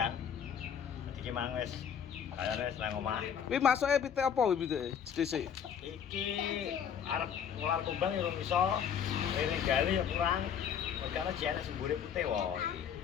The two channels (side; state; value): right; quieter; 8.1 dB